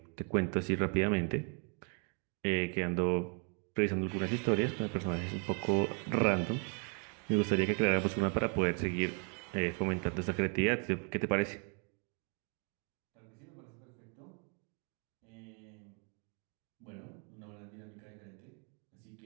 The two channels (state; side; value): quieter; left; 37.6 dB